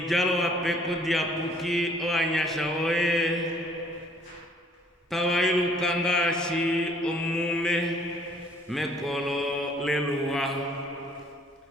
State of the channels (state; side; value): normal; both; correlation 0.60